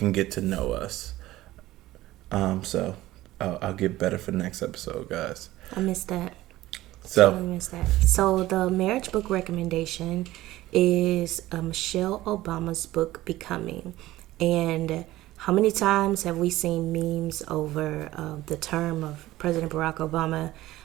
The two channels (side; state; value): left; quieter; 16.4 dB